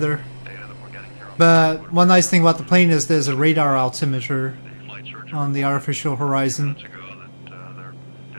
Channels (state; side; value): inverted; both; correlation -1.00